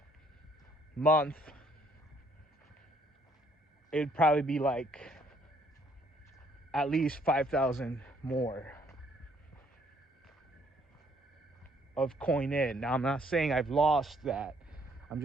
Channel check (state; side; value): normal; both; correlation 0.66